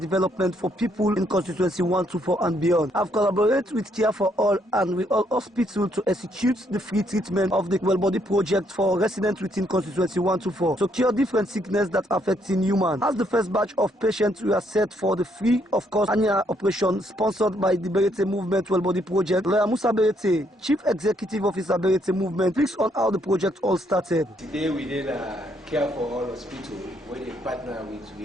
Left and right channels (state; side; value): normal; both; correlation 0.72